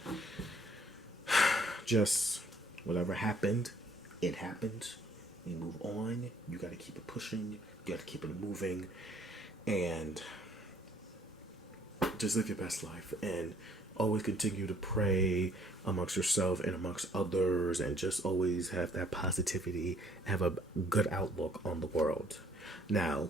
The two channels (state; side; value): normal; both; correlation 0.61